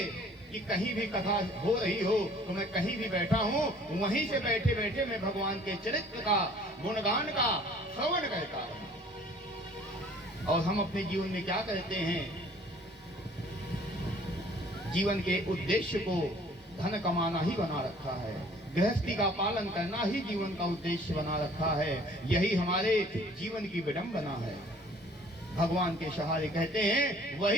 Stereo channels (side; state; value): both; normal; correlation 0.54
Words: कि कहीं भी कथा हो रही हो तो मैं कहीं भी बैठा हूँ, वहीं से बैठे बैठे मैं भगवान के चरित्र का गुणगान का श्रवण करता हूँ। और हम अपने जीवन में क्या करते हैं? जीवन के उद्देश्य को धन कमाना ही बना रखा है, गृहस्थी का पालन करना ही जीवन का उद्देश्य बना रखा है। यही हमारे जीवन की विडंबना है। भगवान के सहारे कहते हैं